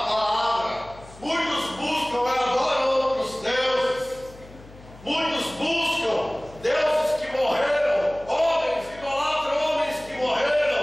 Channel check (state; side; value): noise; left; hum, 20 dB below the sound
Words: Muitos buscam e adoram outros deuses. Muitos buscam deuses que morreram, homens, idolatram homens que